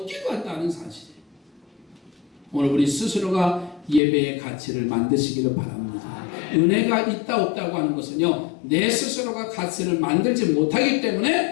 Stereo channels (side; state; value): right; drops out; at 4.0 s